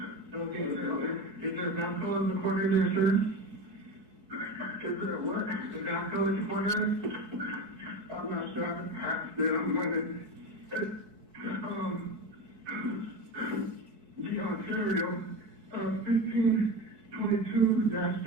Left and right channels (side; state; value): left; late; 4.6 ms